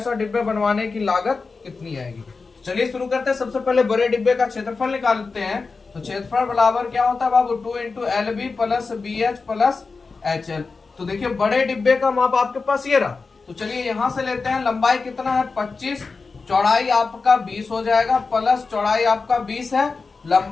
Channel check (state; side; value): quieter; right; 4.4 dB